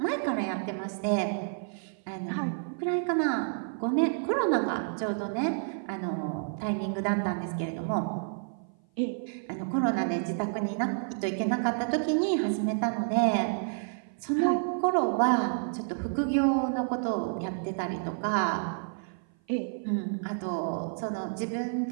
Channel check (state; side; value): silent; left; 55 dB below the other